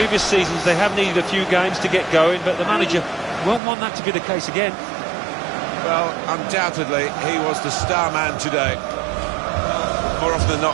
seasons they have needed a few games to get going, but the manager won't want that to be the case again. Well, undoubtedly he was the star man today. More often than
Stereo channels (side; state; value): left; drops out; at 3.6 s